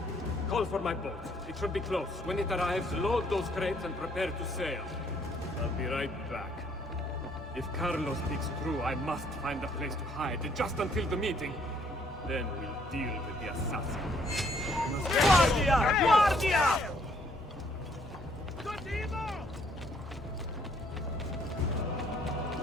call for my boat. It should be close. When it arrives, load those crates and prepare to sail. I'll be right back. If Carlo speaks true, I must find a place to hide, just until the meeting. Then we'll deal with the assassin. Guardia! Guardia!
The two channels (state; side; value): normal; both; correlation 0.65